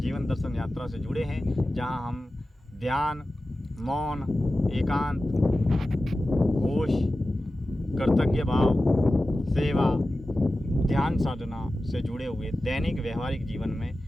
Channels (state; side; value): normal; both; correlation 0.94